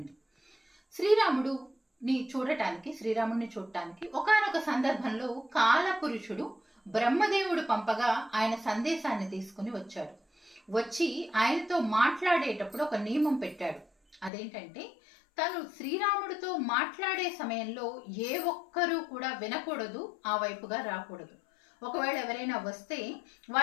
శ్రీరాముడిని చూడటానికి ఒకానొక సందర్భంలో కాలపురుషుడు బ్రహ్మదేవుడు పంపగా ఆయన సందేశాన్ని తీసుకుని వచ్చాడు. వచ్చి ఆయనతో మాట్లాడేటప్పుడు ఒక నియమం పెట్టాడు. అదేంటంటే, తను శ్రీరాముడితో మాట్లాడే సమయంలో ఏ ఒక్కరూ కూడా వినకూడదు, ఆ వైపుగా రాకూడదు. ఒకవేళ ఎవరైనా వస్తే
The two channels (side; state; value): right; drops out; at 14.3 s